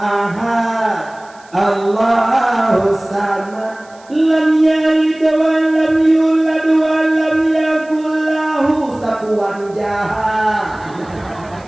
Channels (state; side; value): noise; right; hiss, 28 dB below the sound